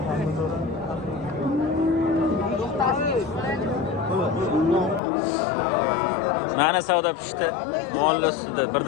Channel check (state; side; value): drops out; right; at 5.0 s